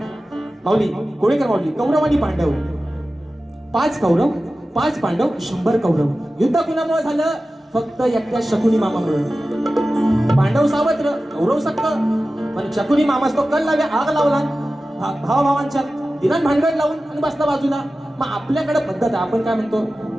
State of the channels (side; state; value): both; normal; correlation 0.95